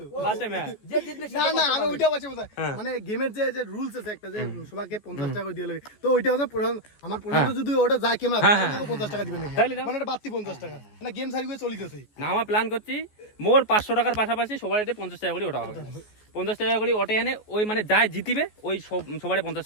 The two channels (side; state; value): right; late; 14 ms